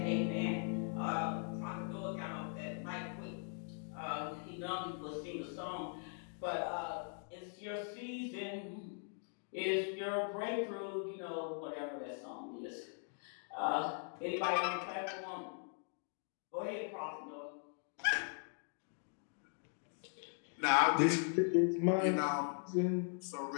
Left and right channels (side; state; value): right; silent; 51 dB below the other